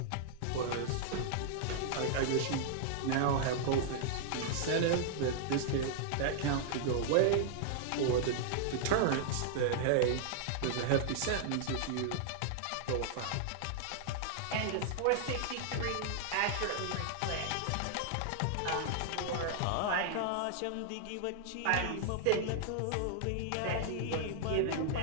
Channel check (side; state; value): both; different; correlation -0.01